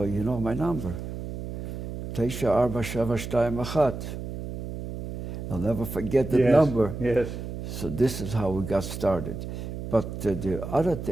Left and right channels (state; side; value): noise; right; hum, 7 dB below the sound